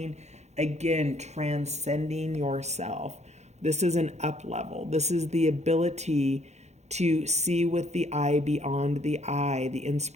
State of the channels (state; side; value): late; left; 0.32 ms